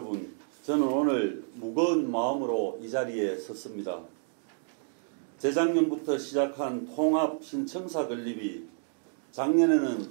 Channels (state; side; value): silent; left; digital silence